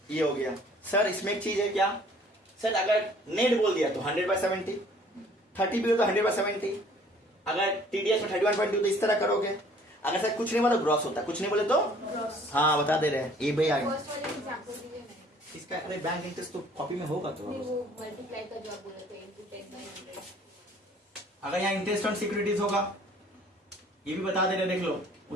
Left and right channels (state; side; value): normal; both; correlation 0.55